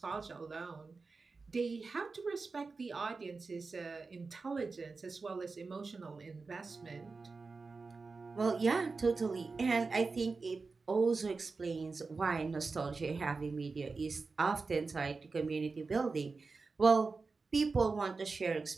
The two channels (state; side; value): quieter; left; 4.2 dB